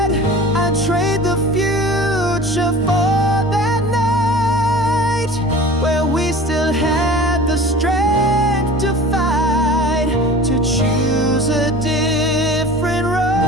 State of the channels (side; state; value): both; normal; correlation 0.40